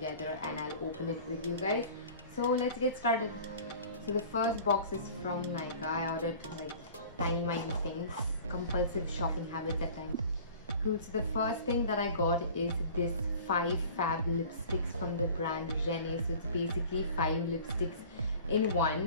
and I'll open it with you guys. So let's get started. So the first box is from Nykaa. I ordered like tiny things, compulsive shopping habits at times. Cool. So the first thing that I got is this 5 fab lipsticks from the brand Renee. So it's basically 5 lipsticks in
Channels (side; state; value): both; inverted; correlation -0.44